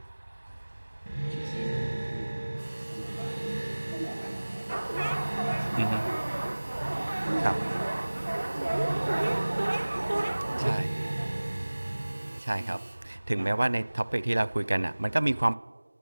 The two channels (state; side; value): inverted; both; correlation -1.00